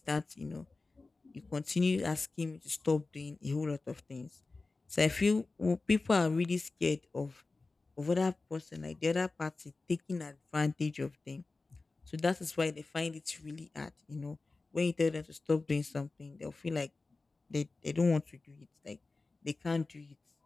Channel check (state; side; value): quieter; right; 3.6 dB